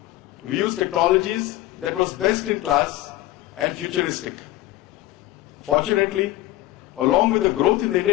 We used technologies that was best in class and futuristic. Fortunately, along with the growth in the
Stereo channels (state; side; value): quieter; right; 16.3 dB